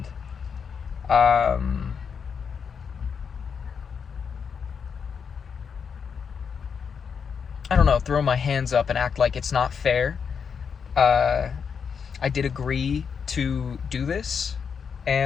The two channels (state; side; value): quieter; right; 6.5 dB